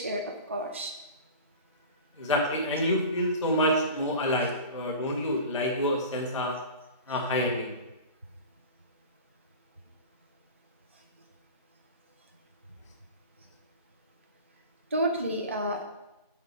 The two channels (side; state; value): both; inverted; correlation -0.34